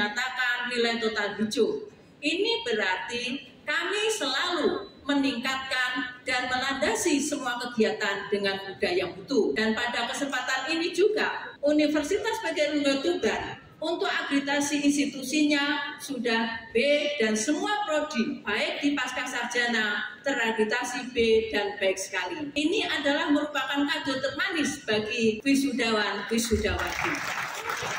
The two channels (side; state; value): both; identical; correlation 1.00